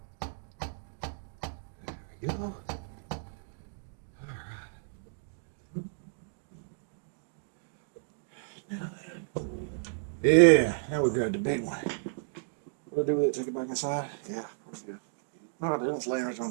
There we go. All right. Now then. Yeah, now we grab the big one. What do we do with it? Take it back inside? Yeah, pretty good. No, it didn't lay right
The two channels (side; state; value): left; silent; digital silence